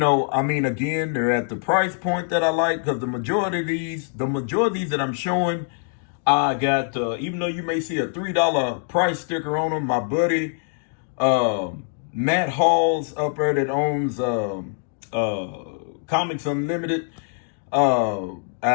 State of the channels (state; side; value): silent; right; 57 dB below the other